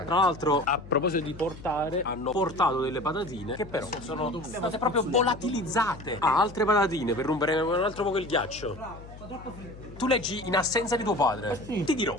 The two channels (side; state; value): left; noise; hum, 16 dB below the sound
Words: Tra l'altro, a proposito di portare, hanno portato delle patatine che però sono state proprio volatilizzate. Altre patatine per rompere un altro poco il ghiaccio. Tu leggi in assenza di tuo padre. Ti dirò.